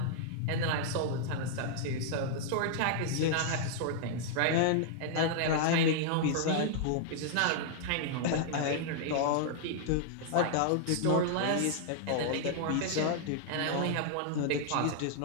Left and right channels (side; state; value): both; different; correlation -0.01